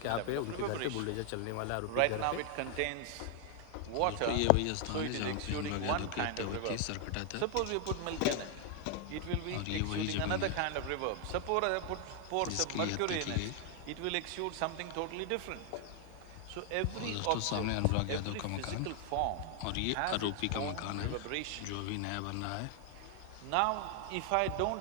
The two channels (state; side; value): different; both; correlation 0.00